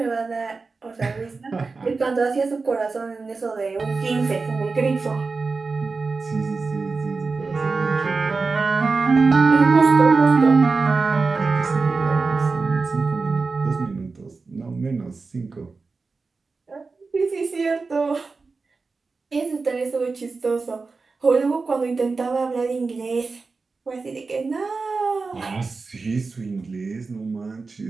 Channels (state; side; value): quieter; left; 4.2 dB